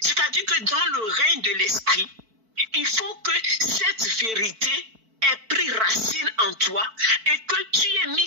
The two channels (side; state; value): left; late; 4.5 ms